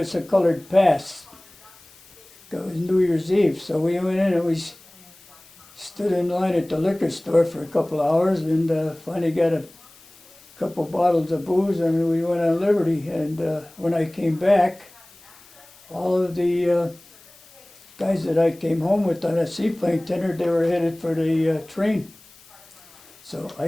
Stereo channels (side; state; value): left; noise; hiss, 25 dB below the sound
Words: a colored pass. It was New Year's Eve, so we went in and we stood in line at the liquor store for a couple hours, and finally got a couple bottles of booze, and we went on liberty. And when I came back, all of the guys that I came home with on a seaplane tender, they were headed for the train. So I